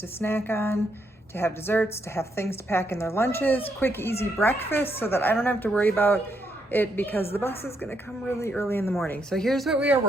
snack on, to have desserts, to have things to pack in their lunches, quick, easy breakfast, so that I don't have to worry about it because the bus is gonna come really early in the morning. So here's what we are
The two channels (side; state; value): both; normal; correlation 0.77